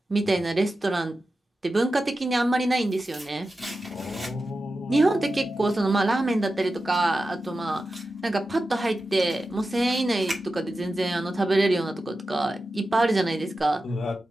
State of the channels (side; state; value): both; normal; correlation 0.92